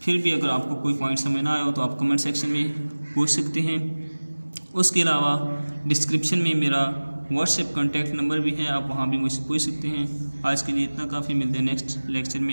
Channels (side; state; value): both; inverted; correlation -1.00